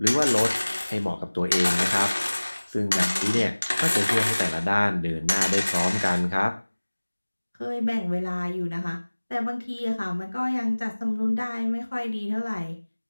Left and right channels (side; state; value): both; inverted; correlation -1.00